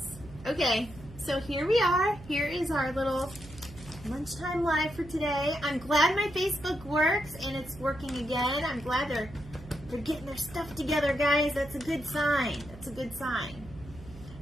Okay, so here we are. Here is our little lunchtime live for today. I'm glad my Facebook works and it's working again. I'm glad they're getting their stuff together, guys. That's a good sign. That's a good sign.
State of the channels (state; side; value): noise; right; hum, 17 dB below the sound